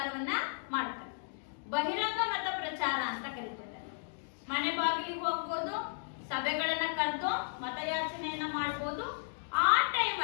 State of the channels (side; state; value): right; silent; digital silence